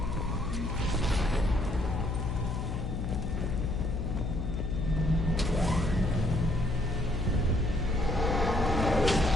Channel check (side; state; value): left; noise; hum, 2 dB below the sound